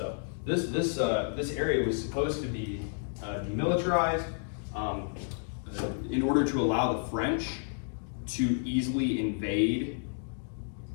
This area was supposed to be demilitarized in order to allow the French to easily invade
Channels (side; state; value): right; silent; digital silence